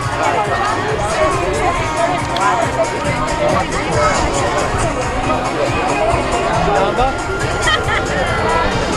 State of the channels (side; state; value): both; identical; correlation 1.00